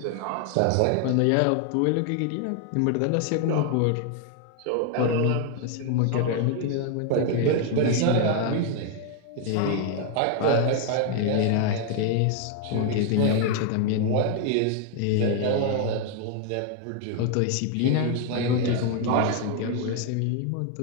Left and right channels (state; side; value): different; both; correlation 0.00